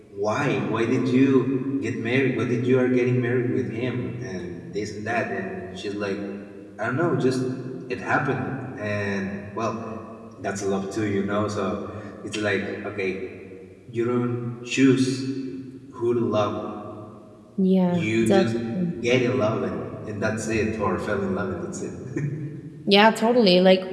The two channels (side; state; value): both; identical; correlation 1.00